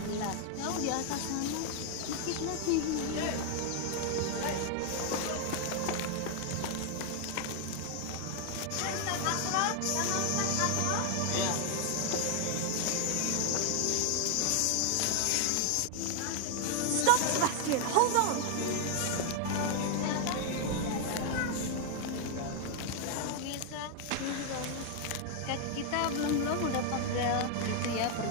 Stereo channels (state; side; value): different; both; correlation 0.00